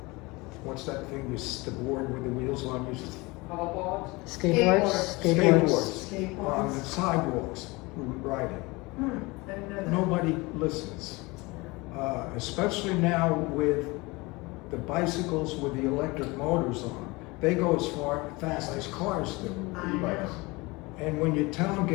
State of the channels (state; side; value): quieter; right; 24.1 dB